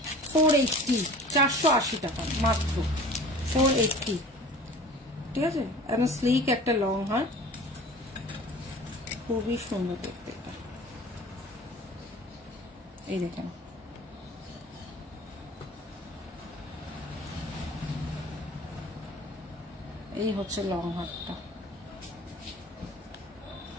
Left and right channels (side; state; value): both; normal; correlation 0.43